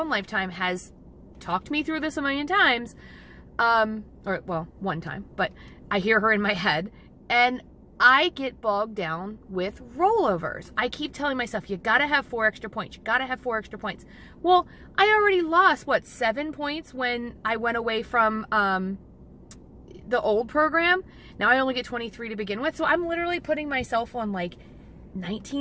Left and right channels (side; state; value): both; identical; correlation 1.00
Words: Lifetime has talked me through this a million times, or well, one time, but I hear her in my head, and I get bogged down with rollovers. I keep telling myself, you gotta have 4 extra points, you gotta have 4 extra points. Well, I already lost, what, 7 points when I went away from the old program. Now I only get 23 to begin with, so I'm literally putting myself on like